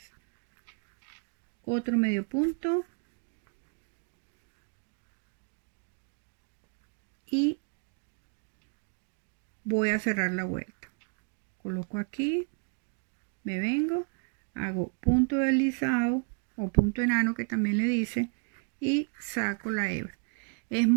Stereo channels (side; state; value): left; quieter; 39.1 dB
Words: otro medio punto. Y voy a cerrar la vuelta. Coloco aquí, me vengo, hago punto deslizado o punto enano que también le dice, y saco la hebra. Es